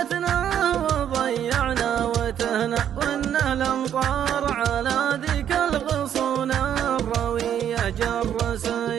وضيعنا وتهنا، وان الامطار على ذيك الغصون الرويه جر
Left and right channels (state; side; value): quieter; left; 9.7 dB